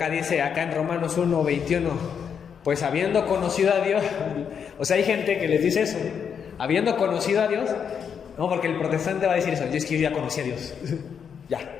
dice, acá en Romanos 1:21, pues habiendo conocido a Dios, o sea, hay gente que les dice eso, habiendo conocido a Dios, no, porque el protestante va a decir eso, yo es que yo ya conocí a Dios, ya.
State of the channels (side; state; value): right; quieter; 7.2 dB